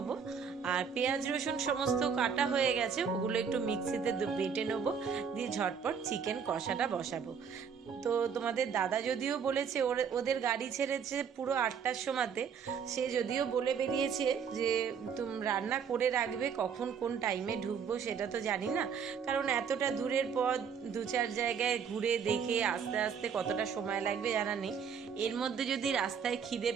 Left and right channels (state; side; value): quieter; left; 6.8 dB